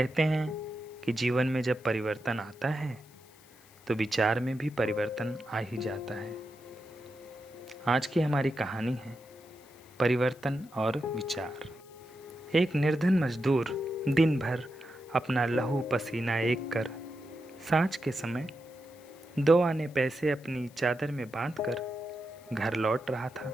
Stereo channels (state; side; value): noise; left; hiss, 26 dB below the sound